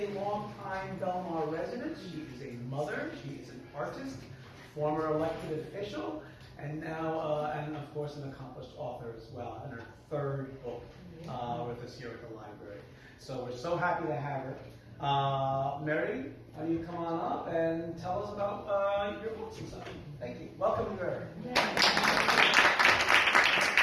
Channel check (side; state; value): both; identical; correlation 1.00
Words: longtime Belmar resident. She is a mother. She is an artist, former elected official, and now, and of course, an accomplished author as well, and her third book with us here at the library. So we're so happy to have her. Mary, why don't you come on up and tell us about your books and stuff. Thank you. Welcome, Mary. Thank